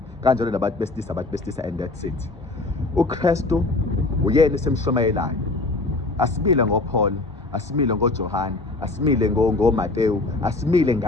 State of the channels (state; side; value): quieter; right; 3.2 dB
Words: Kanjalo nabantu besilisa and that's it. uKristu uyena esemshumayelayo. Asimile ngoPaul, asimile ngoJohane, asimile ngoMateyu, asimile